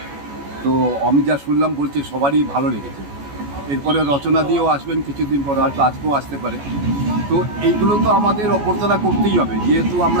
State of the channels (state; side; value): late; left; 14 ms